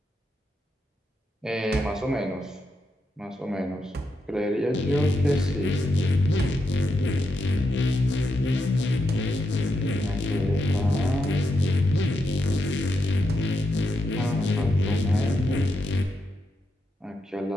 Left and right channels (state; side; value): normal; both; correlation 0.84